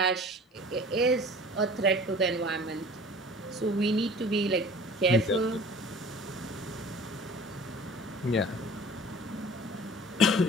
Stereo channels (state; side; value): normal; both; correlation 0.44